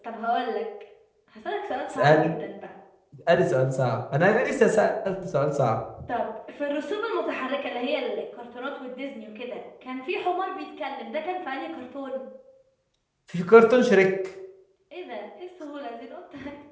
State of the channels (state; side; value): identical; both; correlation 1.00